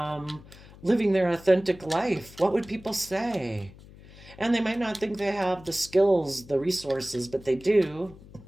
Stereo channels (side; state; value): left; noise; hum, 20 dB below the sound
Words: living their authentic life. What would people say? And they might not think they have the skills, the resources, but they do.